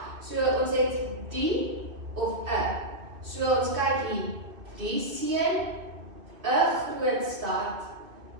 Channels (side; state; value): left; late; 2.8 ms